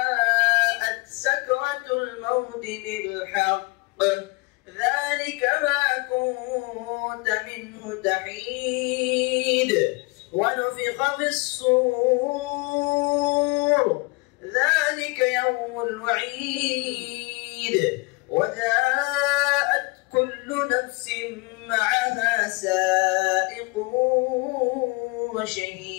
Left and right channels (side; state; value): right; quieter; 27.5 dB